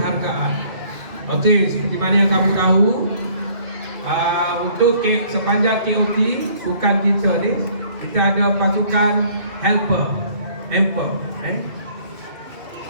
Okey, seperti mana yang kamu tahu, untuk sepanjang KOT bukan kita ni, kita ada pasukan helper.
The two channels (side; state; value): left; late; 2.5 ms